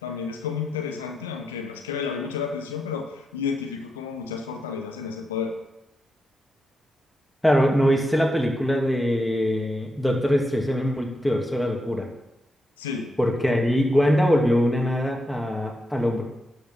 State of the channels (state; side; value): normal; both; correlation 0.84